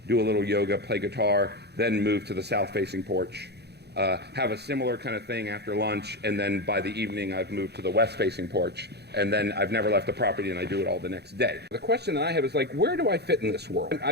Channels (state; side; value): late; left; 0.48 ms